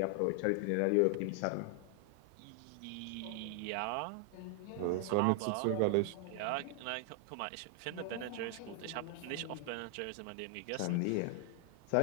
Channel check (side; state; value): both; different; correlation 0.00